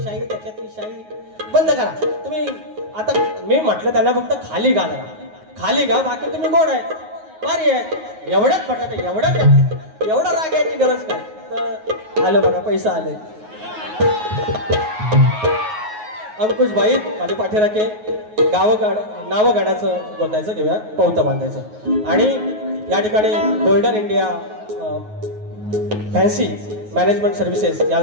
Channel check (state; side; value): late; left; 9.4 ms